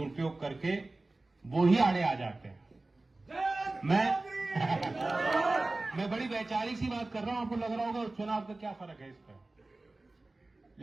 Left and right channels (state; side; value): quieter; left; 3.0 dB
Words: करके वो ही आड़े आ जाते हैं। मैं बड़ी वैचारिक सी बात कर रहा हूं, आपको लग रहा होगा चुनाव का क्या फर्क है इस पर,